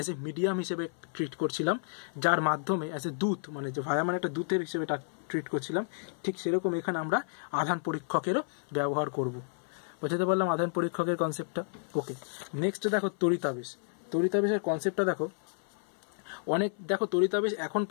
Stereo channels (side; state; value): right; silent; 57 dB below the other